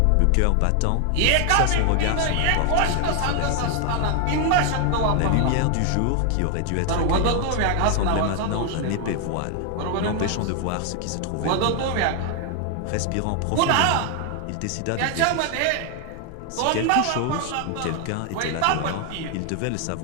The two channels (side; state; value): both; different; correlation 0.00